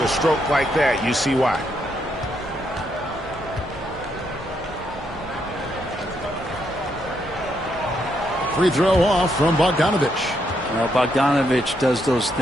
stroke like that, you see why. Free throw off from Bogdanovich. Well, Bogdanovich does those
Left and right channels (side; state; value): both; normal; correlation 0.77